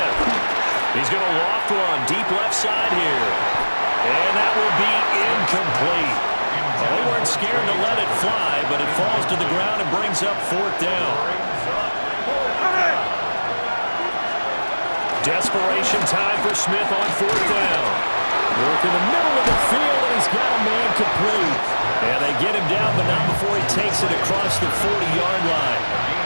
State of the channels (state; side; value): inverted; both; correlation -1.00